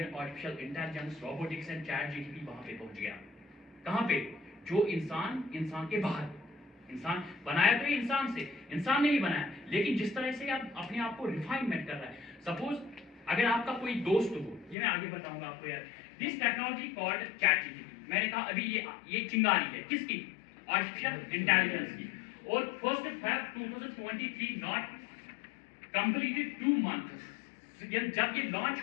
artificial intelligence, robotics and chat G T P वहां पे पहुंच गया। कहां पे? जो इंसान के बाहर। इंसान बनाया तो इंसान से, इंसान ने ही बनाया, लेकिन जिस तरह से आप अपने आप को रिफाइनमेंट कर रहा है। सपोज अगर आपका कोई दोस्त हो, ये मैं आगे बताऊंगा आपको यार, this technology called chat GTP. मैंने कहा अभी ये चिंगारी है, किसकी? आर्टिफिशियल इंटेलिजेंस की। और 1 Feb 2023 नॉट कंप्लीटेड 2 months, जब ये लॉन्च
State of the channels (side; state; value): right; drops out; at 14.8 s